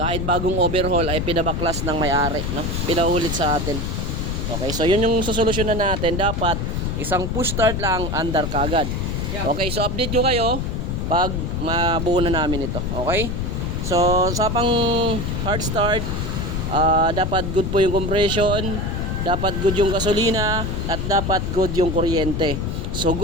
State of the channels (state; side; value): noise; left; rumble, 2 dB below the sound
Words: bagong overhaul ay pinabaklas ng may-ari, no? Pinaulit sa atin. Okay, so yun yung sosolusyonan natin. Dapat isang push start lang, andar kagad. Okay, so update nyo kayo pag mabuo na namin ito. Okay, so sa pang hard start, dapat good po yung compression, dapat good yung gasolina, at dapat good yung kuryente. So